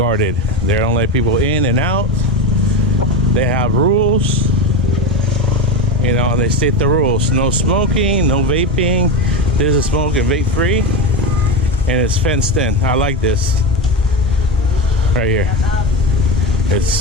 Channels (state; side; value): normal; both; correlation 0.19